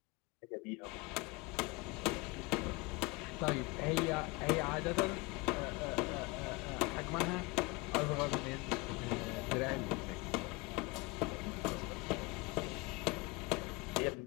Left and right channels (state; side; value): quieter; right; 25.2 dB